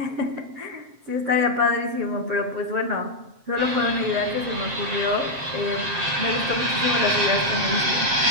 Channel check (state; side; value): late; left; 7.6 ms